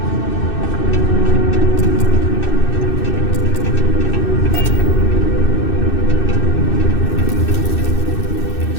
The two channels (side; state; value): right; late; 2.6 ms